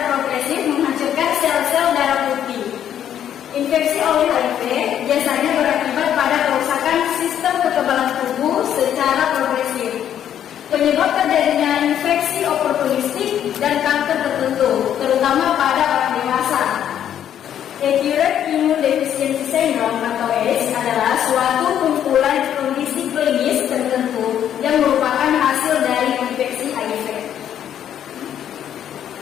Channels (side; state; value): right; quieter; 10.0 dB